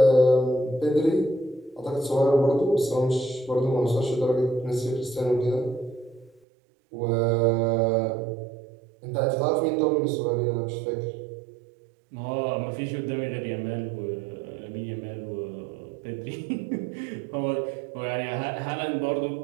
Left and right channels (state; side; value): drops out; left; at 6.4 s